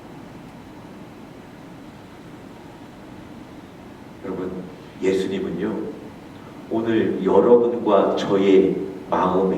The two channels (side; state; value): both; identical; correlation 1.00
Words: 여러분, 예수님은요, 오늘 여러분과 저의